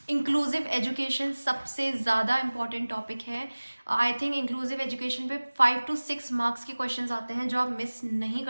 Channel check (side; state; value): both; inverted; correlation -1.00